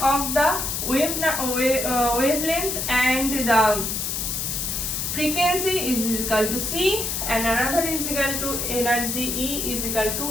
of the wavelength and the frequency is equal to c, and another is equal to energy E is equal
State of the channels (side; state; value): left; noise; hiss, 2 dB below the sound